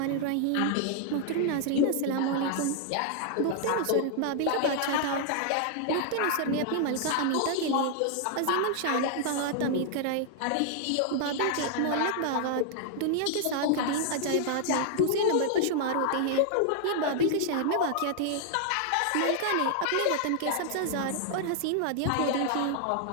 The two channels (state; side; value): different; both; correlation -0.01